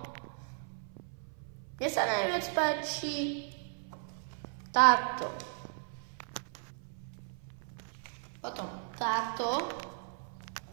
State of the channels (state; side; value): silent; left; 54 dB below the other